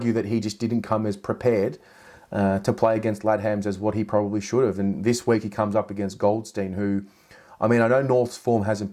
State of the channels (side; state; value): both; identical; correlation 1.00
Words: that he just didn't come as prepared to play against Ladhams as what he probably should have. And this week he comes up against Goldstein, who, I mean, I know North's form hasn't